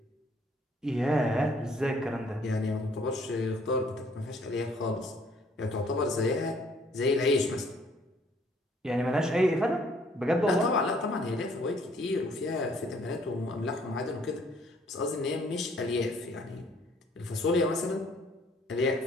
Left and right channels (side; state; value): both; normal; correlation 0.62